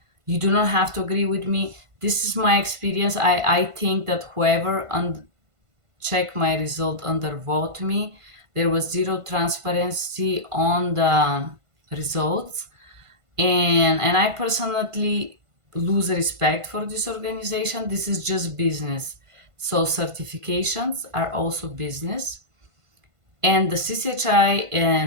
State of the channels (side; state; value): left; late; 1.5 ms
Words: You do not have to agree with me. This is my experience. I think that whoever check my result undervote me. There was zero transparency on the results, and I personally lose respect for this organization. This is just business. So certifications are also business, and the CCHI